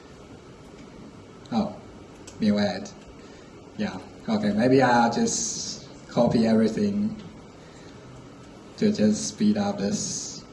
Oh, mu add. Yeah. Okay. Maybe I'll just copy everything to just speed up this.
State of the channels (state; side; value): identical; both; correlation 1.00